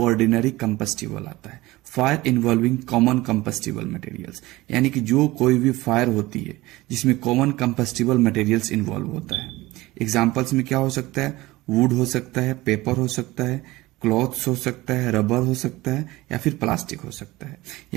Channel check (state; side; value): quieter; left; 19.4 dB